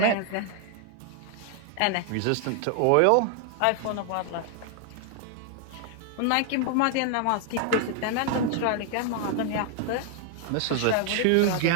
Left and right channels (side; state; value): both; different; correlation 0.00